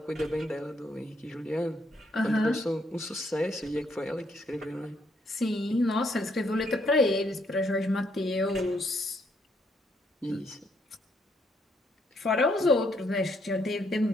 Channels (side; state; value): both; normal; correlation 0.72